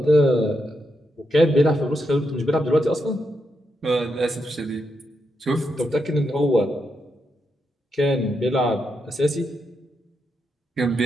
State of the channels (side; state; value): both; normal; correlation 0.83